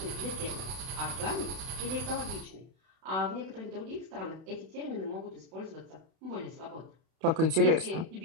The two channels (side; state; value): left; late; 31 ms